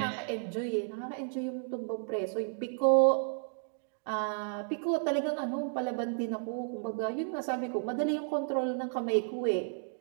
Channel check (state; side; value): silent; left; digital silence